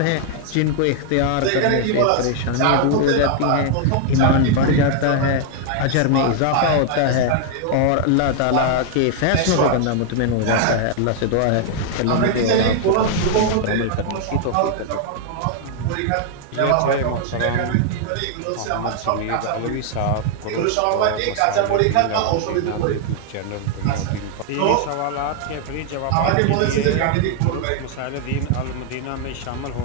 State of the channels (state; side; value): different; both; correlation 0.00